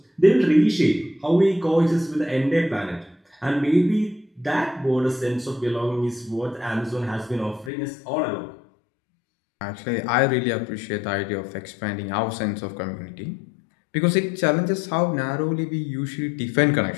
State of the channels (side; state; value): right; drops out; at 7.7 s